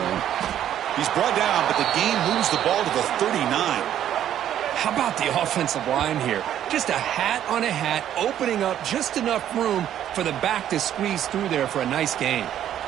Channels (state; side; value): quieter; left; 10.9 dB